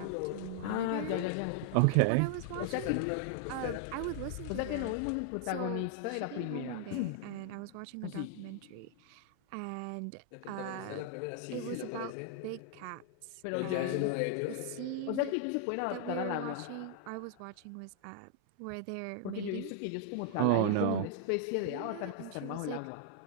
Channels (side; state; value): both; different; correlation 0.00